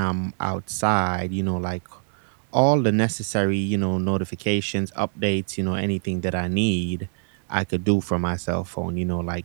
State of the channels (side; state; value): left; silent; digital silence